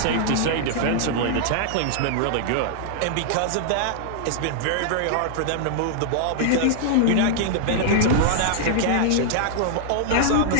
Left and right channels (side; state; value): both; different; correlation -0.01